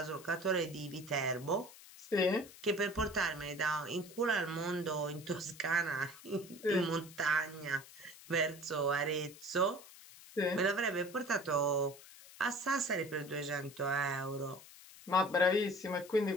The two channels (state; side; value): noise; left; hiss, 19 dB below the sound